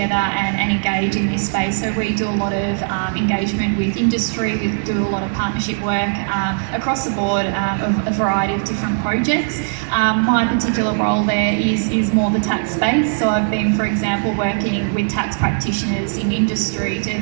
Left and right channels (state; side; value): silent; left; digital silence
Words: and engage in this space. So we do a lot of engagement with industry, we do a lot of partnership work across the board of a variety of different projects. My particular role there is more the tax space. So I've been, for example, working with tax practitioners in industry